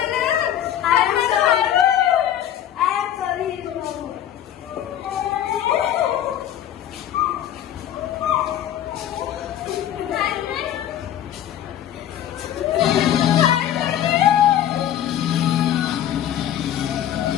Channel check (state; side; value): quieter; right; 11.0 dB